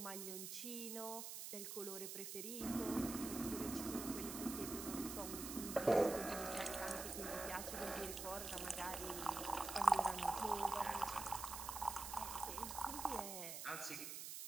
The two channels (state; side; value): noise; right; hiss, 6 dB below the sound